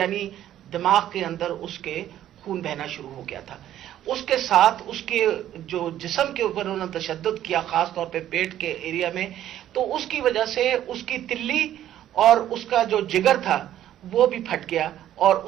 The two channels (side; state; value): left; quieter; 11.9 dB